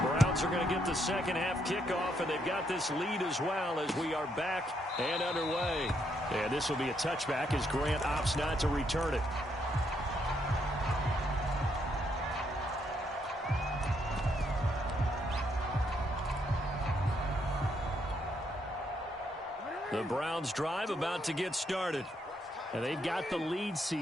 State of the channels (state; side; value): normal; both; correlation 0.75